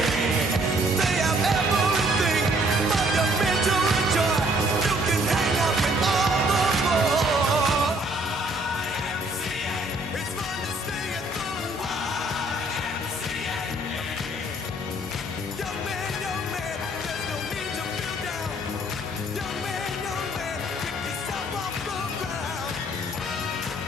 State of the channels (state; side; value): normal; both; correlation 0.62